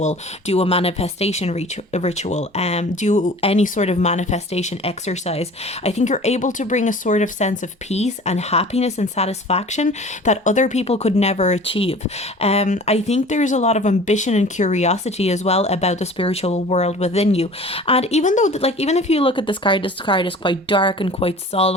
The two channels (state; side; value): normal; both; correlation 0.44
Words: do a manifestation ritual, do any sort of manifestation exercise. I think you're able to bring a sort of sense of peace and happiness and satisfaction that other people could never achieve. I think there's a lot of ambition and curiosity as well about the spiritual world within you. And even though even if you look at this card is quite dark and quite